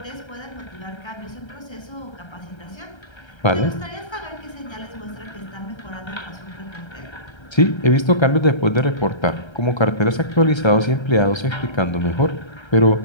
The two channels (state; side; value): late; right; 1.3 ms